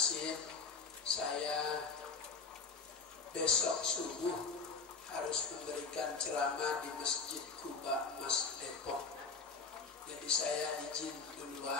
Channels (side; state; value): right; quieter; 4.7 dB